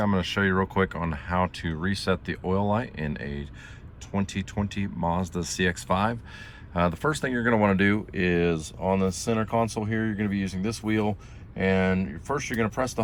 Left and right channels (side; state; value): both; identical; correlation 1.00